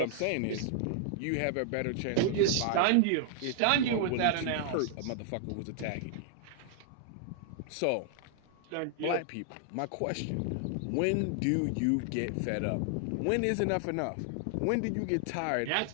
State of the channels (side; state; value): both; different; correlation 0.00